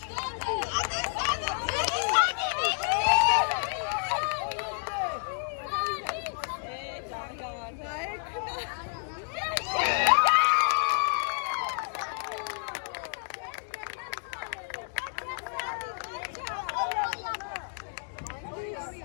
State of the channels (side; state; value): right; silent; digital silence